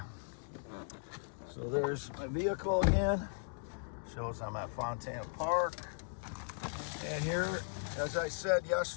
So there's my vehicle again. Shows I'm at Fontana Park. And here, as I said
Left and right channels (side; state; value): right; silent; digital silence